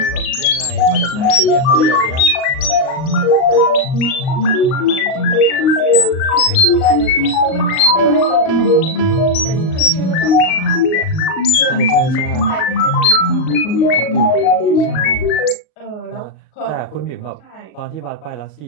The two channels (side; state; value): right; late; 38 ms